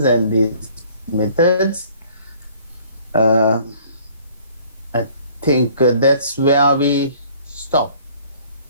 and these methods. I think that's where we stop.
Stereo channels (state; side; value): inverted; both; correlation -0.55